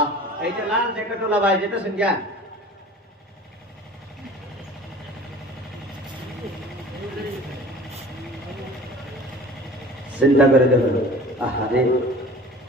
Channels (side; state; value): both; normal; correlation 0.44